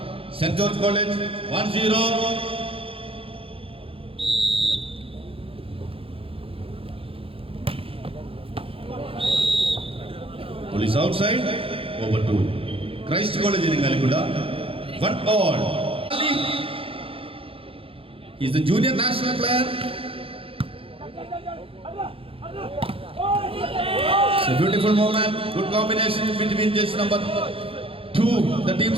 saint George college 1-0. Police outside, over to Christ College in Ngalgunda. 1-all. He's the junior national player. It's a beautiful moment. Good combination between just number 2, the team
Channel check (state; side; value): late; left; 0.27 ms